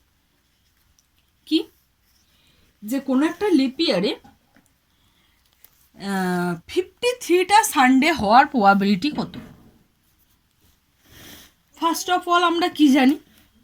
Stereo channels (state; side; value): identical; both; correlation 1.00